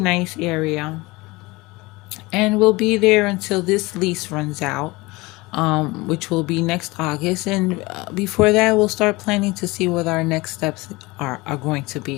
area. And we'll be there until this lease runs out, which will be next August. And before that, we'll start planning to see what our next steps are going to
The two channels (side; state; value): right; quieter; 22.6 dB